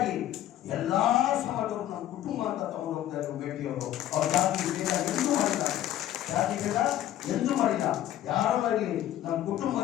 ಎಲ್ಲಾ ಸಮಾಜವರು ನಮ್ಮ ಕುಟುಂಬ ಅಂತ ತಗೊಂಡು ಹೋಗ್ತಾ ಇದ್ರು ಮೇಟಿಯವರು. ಅವ್ರ ಜಾತಿ ಭೇದ ಎಂದೂ ಮಾಡಿಲ್ಲ, ಜಾತಿ ಭೇದ ಎಂದೂ ಮಾಡಿಲ್ಲ. ಯಾರೋ ಆಗಲಿ ನಮ್ಮ ಕುಟುಂಬ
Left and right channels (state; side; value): quieter; right; 12.6 dB